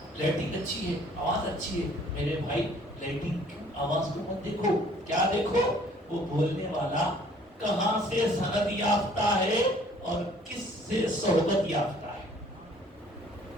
لائٹنگ اچھی ہے، آواز اچھی ہے. میرے بھائی لائٹنگ آواز کو مت دیکھو، کیا دیکھو وہ بولنے والا کہاں سے سند یافتہ ہے اور کس سے صحبت یافتہ ہے.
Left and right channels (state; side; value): normal; both; correlation 0.57